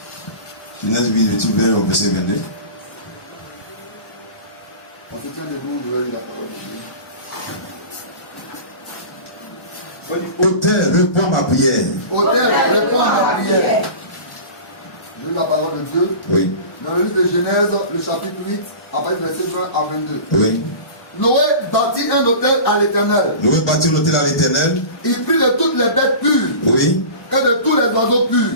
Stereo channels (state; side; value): late; right; 1.1 ms